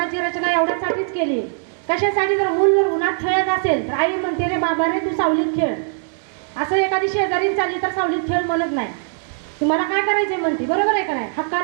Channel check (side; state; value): left; silent; 65 dB below the other